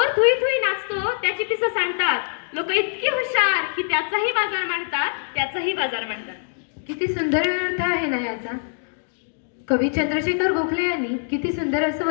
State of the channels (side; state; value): right; silent; digital silence